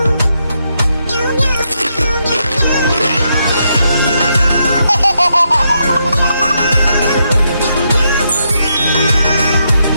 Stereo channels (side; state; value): both; inverted; correlation -0.80